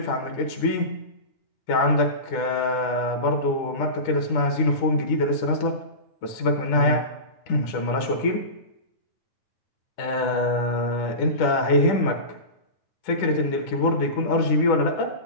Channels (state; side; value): late; right; 10 ms